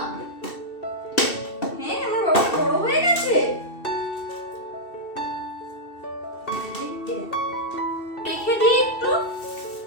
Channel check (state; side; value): late; right; 2.7 ms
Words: হ্যাঁ আমার বাবা বড় হয়ে গেছে। রেখে দিই একটু,